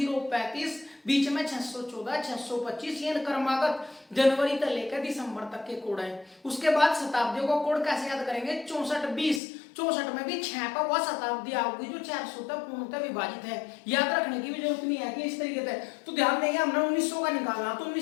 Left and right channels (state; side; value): drops out; right; at 9.4 s